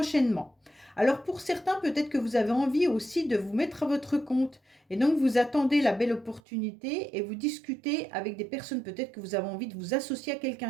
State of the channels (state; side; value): drops out; left; at 6.4 s